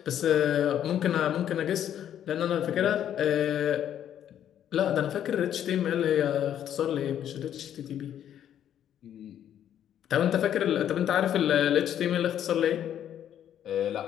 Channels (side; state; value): right; quieter; 10.3 dB